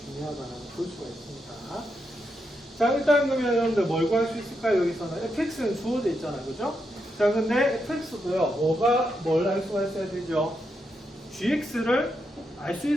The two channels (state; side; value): normal; both; correlation 0.83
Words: 중요하다라고 볼 수가 있습니다. 자, 일단 그러면 여러분들 뭘 구할 수 있을까요? 여기서는 fx는 주어져 있잖아요. 그죠? 자, 근데 fx도요, 뭘 알 수가 있어야 되죠? gx를 알 수